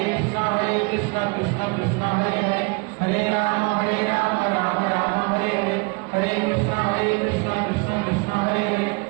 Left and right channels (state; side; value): quieter; left; 29.6 dB